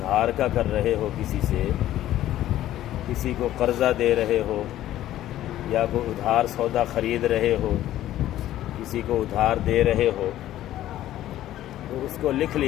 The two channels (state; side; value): quieter; right; 13.4 dB